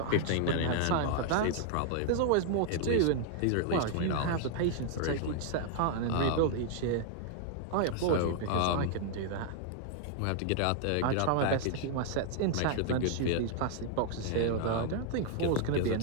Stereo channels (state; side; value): different; both; correlation -0.01